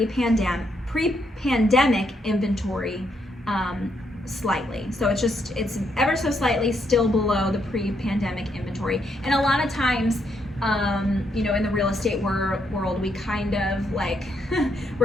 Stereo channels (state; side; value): normal; both; correlation 0.76